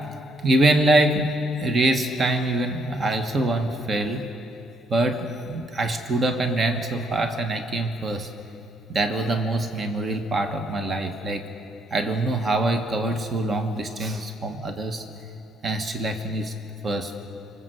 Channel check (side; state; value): both; normal; correlation 0.71